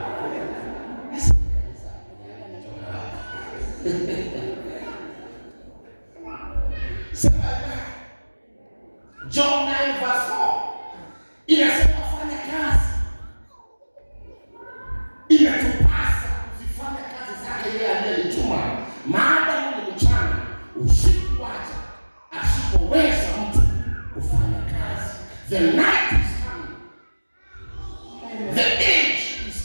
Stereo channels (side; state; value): both; inverted; correlation -1.00